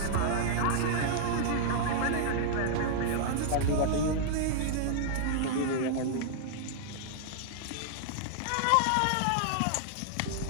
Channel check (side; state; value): both; different; correlation -0.01